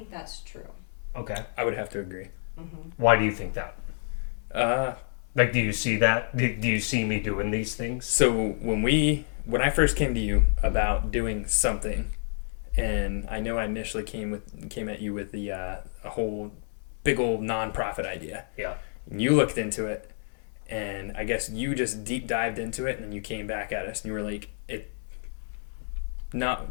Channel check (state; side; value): silent; right; 59 dB below the other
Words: that's true. Okay. I would have to agree. Why do you think that? Uh, Like, do you see that? Do you see me doing these things? so when I first came to you about doing something, and I know I initially came at you with the a whole big old nonprofit idea. Yeah. And you looked into it, and I guess you just deep dived into it, and then you came back at us, and you were like, not